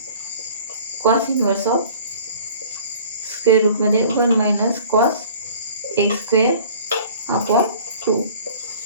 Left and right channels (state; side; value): inverted; both; correlation -0.48